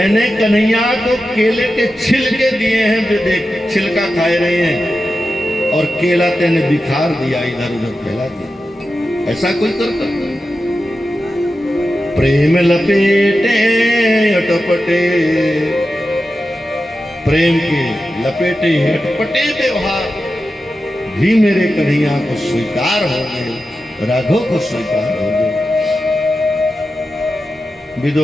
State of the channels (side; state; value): both; normal; correlation 0.91